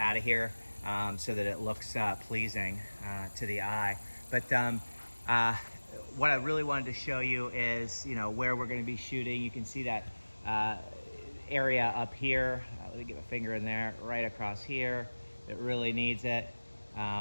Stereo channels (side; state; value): both; inverted; correlation -1.00